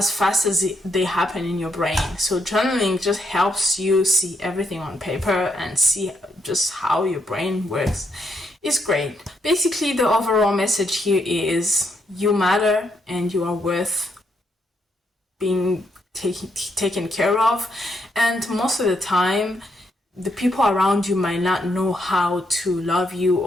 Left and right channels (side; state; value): both; normal; correlation 0.77